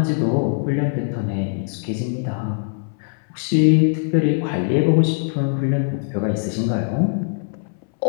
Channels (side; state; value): right; silent; 63 dB below the other